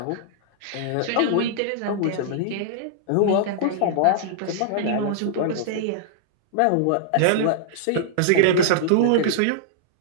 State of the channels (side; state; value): both; different; correlation -0.01